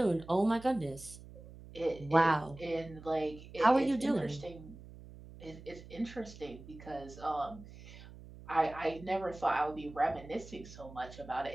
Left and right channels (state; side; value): noise; right; hum, 17 dB below the sound